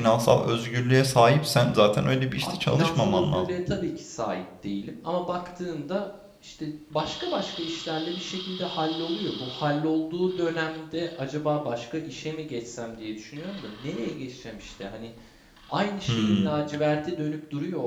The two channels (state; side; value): identical; both; correlation 1.00